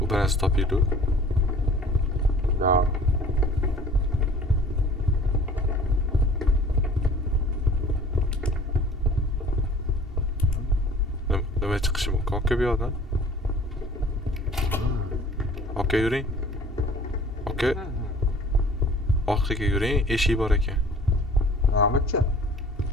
U narsa topildi. Yo'q. Nima chiqishi mumkin aka bu yoqdan? Aka yuring. Aka. Orqaga yuring, eshik bor ekan. Nima-chi?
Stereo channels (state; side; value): normal; both; correlation 0.49